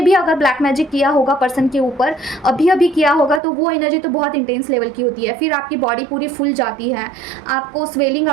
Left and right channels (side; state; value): left; drops out; at 3.4 s